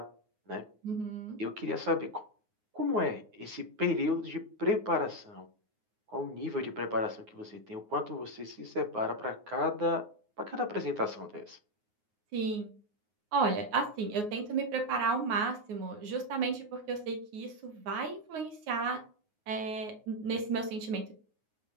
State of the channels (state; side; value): late; left; 9.5 ms